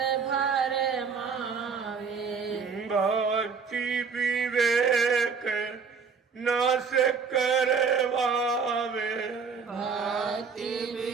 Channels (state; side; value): quieter; left; 5.6 dB